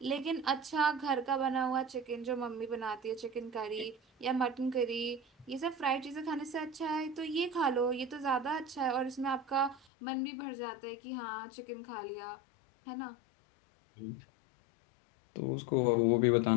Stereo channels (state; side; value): drops out; right; at 9.9 s